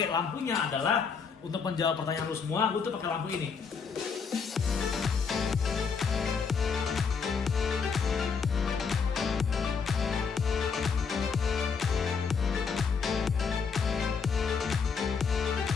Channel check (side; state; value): right; quieter; 5.7 dB